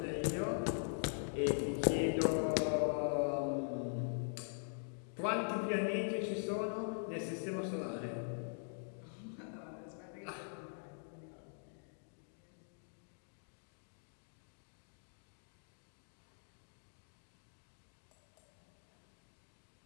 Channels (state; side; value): silent; right; digital silence